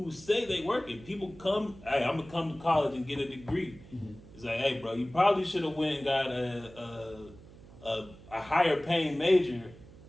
say they work it. People come, hey, I'm gonna come to college and get a degree. Mm-hmm. It's like, hey, bro, you probably should have went and got a higher paying major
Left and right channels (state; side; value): noise; right; hum, 20 dB below the sound